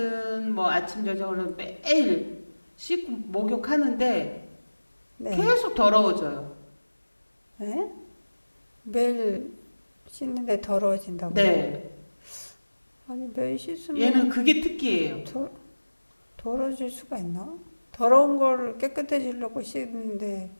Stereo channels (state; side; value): inverted; both; correlation -1.00